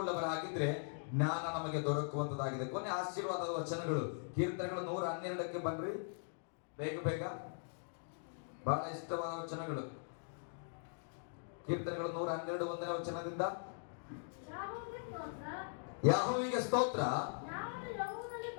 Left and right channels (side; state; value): right; silent; digital silence